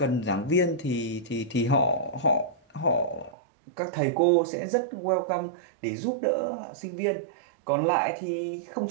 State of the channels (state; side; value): drops out; left; at 3.4 s